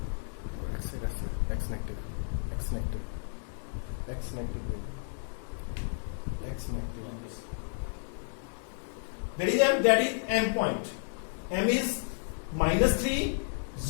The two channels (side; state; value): right; silent; digital silence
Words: X negative. X negative. X negative. X negative. Where is M? That is M point. m is -3,